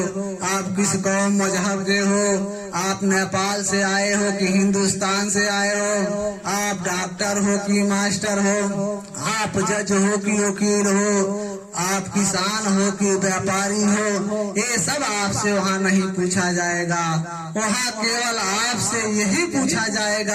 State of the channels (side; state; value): both; identical; correlation 1.00